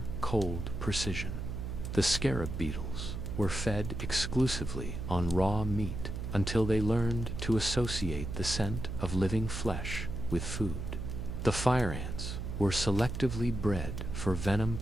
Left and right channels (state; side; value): noise; right; hum, 5 dB below the sound